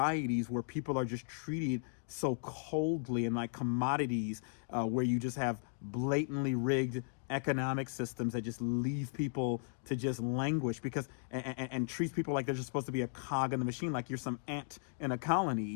where people are just treated so coldly and like commodities, where you just have blatantly rigged economic systems that just leave people to just languish because and treats people like they're just supposed to be a cog in the machine, like you're some ant in a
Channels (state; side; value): silent; right; digital silence